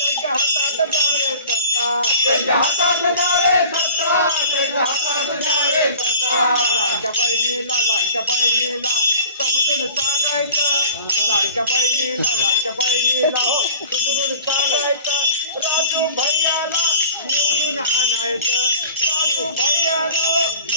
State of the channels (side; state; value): both; inverted; correlation -0.43